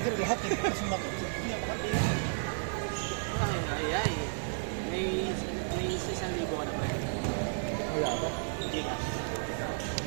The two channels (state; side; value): silent; left; digital silence